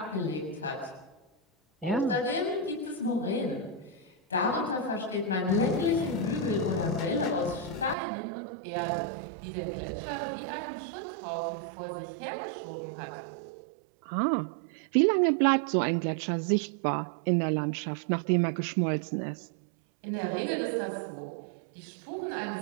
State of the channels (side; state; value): left; drops out; at 8.0 s